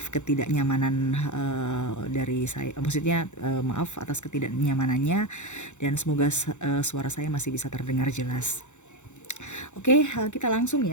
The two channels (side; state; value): right; late; 0.84 ms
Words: ketidaknyamanan dari saya. Maksudnya maaf atas ketidaknyamanannya dan semoga suara saya masih bisa terdengar jelas. Oke, kita langsung